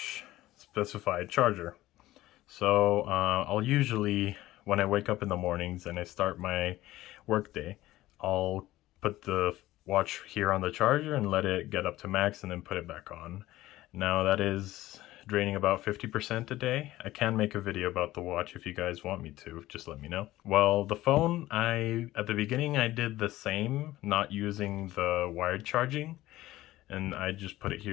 specified charger. So I'll usually, when I wake up in the mornings and I start my workday, I'll put the watch here on the charger and let it get up to max and then put it back on. Now that is draining about 50% a day. I can make a video about the watch if you guys want me to, just let me know. Well, the phone, at the beginning I did the same, not using the wired charging, and I just put it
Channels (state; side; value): quieter; right; 16.2 dB